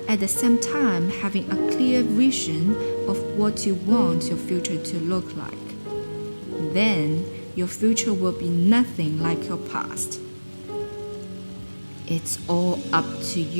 at the same time having a clear vision of what you want your future to look like, then your future will be nothing like your past. It's all up to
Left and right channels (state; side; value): inverted; both; correlation -1.00